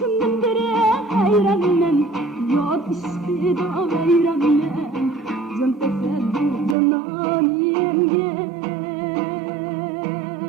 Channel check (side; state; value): left; drops out; at 6.8 s